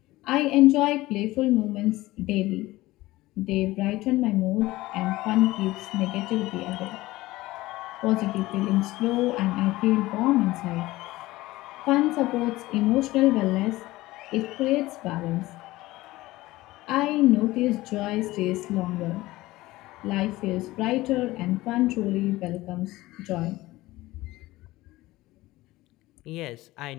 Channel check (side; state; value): right; quieter; 18.4 dB